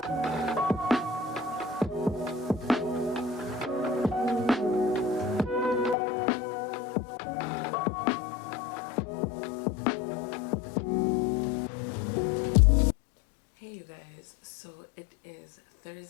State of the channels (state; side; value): drops out; right; at 6.0 s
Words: Hey you guys, so it is